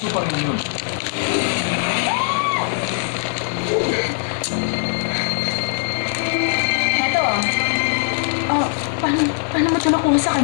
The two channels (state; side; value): silent; right; digital silence